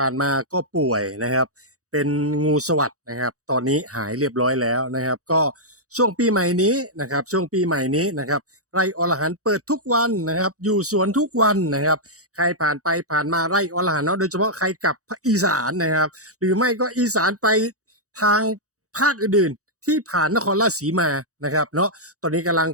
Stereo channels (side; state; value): left; late; 0.66 ms